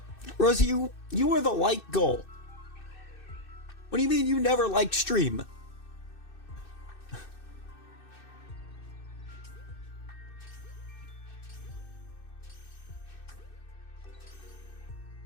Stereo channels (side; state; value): right; late; 2.6 ms